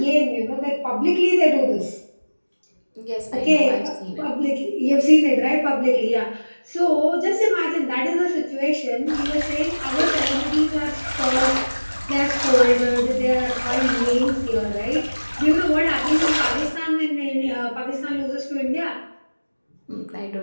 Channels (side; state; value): both; inverted; correlation -1.00